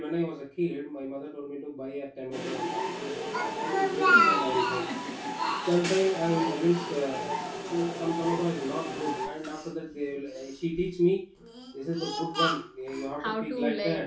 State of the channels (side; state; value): both; identical; correlation 1.00